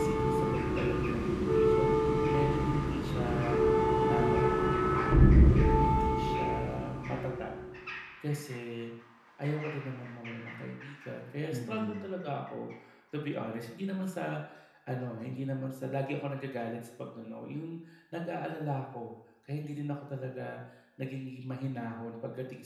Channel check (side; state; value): both; identical; correlation 1.00